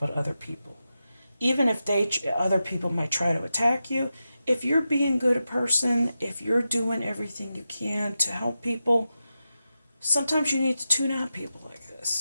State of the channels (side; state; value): both; inverted; correlation -0.91